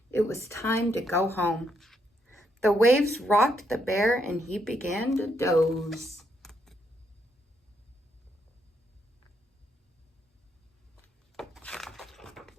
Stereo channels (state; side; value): normal; both; correlation 0.76